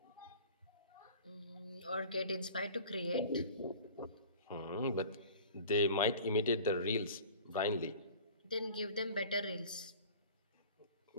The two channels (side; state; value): both; inverted; correlation -0.44